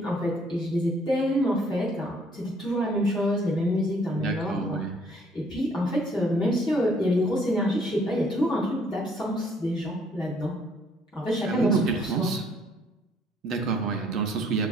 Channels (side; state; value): both; normal; correlation 0.63